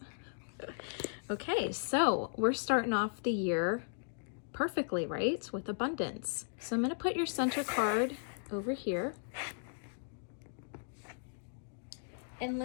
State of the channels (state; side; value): silent; right; digital silence